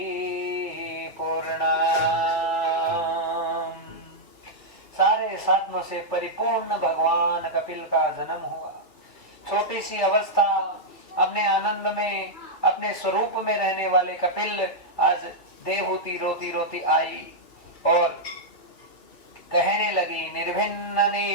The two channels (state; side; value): late; right; 2.6 ms